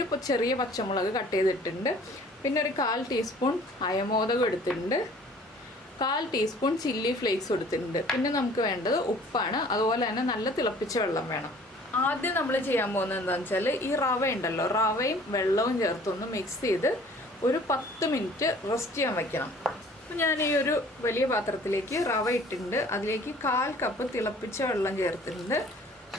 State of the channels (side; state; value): both; normal; correlation 0.52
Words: ചെറിയ പച്ചമുളക് കട്ട് ചെയ്തിട്ടുണ്ട്. പിന്നെ ഒരു 1/4 ടീസ്പൂൺ അയമോദകം എടുത്തിട്ടുണ്ട്. 1/4 ടീസ്പൂൺ ചില്ലി ഫ്ലേക്സ് എടുത്തിട്ടുണ്ട്. പിന്നെ നമുക്ക് വേണ്ടത് ഉപ്പാണ്. അതുപോലെ തന്നെ നല്ല തിളപ്പിച്ച വെള്ളം വേണം. ആദ്യം നമ്മൾ ചെയ്യാൻ പോകുന്നത് എന്താണെന്ന് വെച്ചാൽ ഈ റവ ഉണ്ടല്ലോ, റവയും വെള്ളവും ചേർത്തൊന്ന് മിക്സ് ചെയ്ത് ഒരു 10 മിനിറ്റ് റെസ്റ്റ് ചെയ്യാൻ വയ്ക്കണം. അപ്പോൾ ഞാൻ ഈ ഒരു വലിയ പാത്രത്തിലേക്ക് റവ ഇട്ടിട്ടുണ്ട്. അതിലേക്ക് 1/4 കപ്പ് തിളപ്പിച്ച വെള്ളം ചേർത്തിട്ടുണ്ട്.